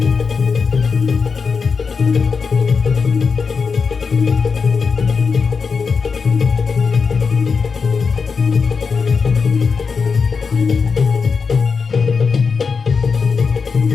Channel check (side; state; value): right; quieter; 5.3 dB